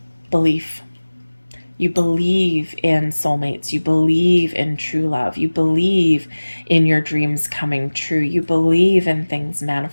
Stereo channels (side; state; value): both; inverted; correlation -1.00